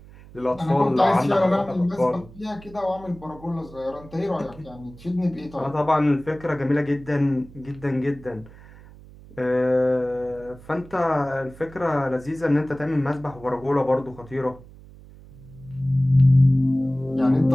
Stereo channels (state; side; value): noise; right; hum, 20 dB below the sound